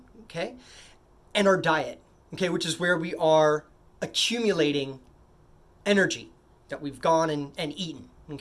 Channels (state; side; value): identical; both; correlation 1.00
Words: okay? And our diet, okay? Which is where we are accumulating energy that we've gone and eaten,